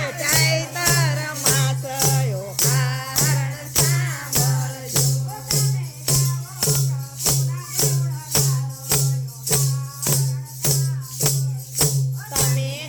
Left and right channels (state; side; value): identical; both; correlation 1.00